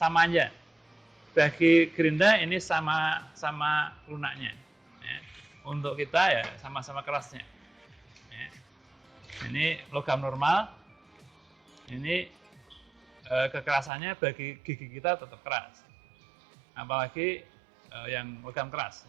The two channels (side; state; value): left; drops out; at 13.9 s